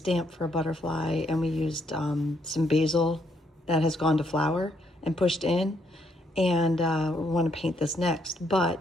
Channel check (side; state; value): both; normal; correlation 0.73